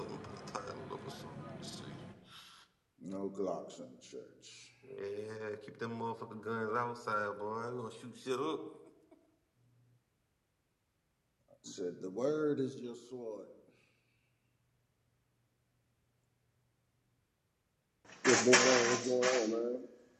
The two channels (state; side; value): identical; both; correlation 1.00